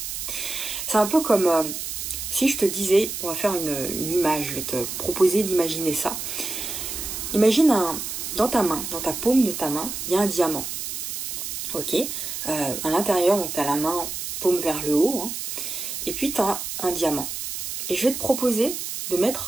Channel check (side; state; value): right; noise; hiss, 5 dB below the sound